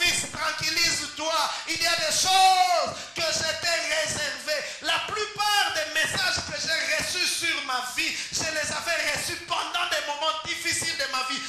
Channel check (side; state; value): both; identical; correlation 1.00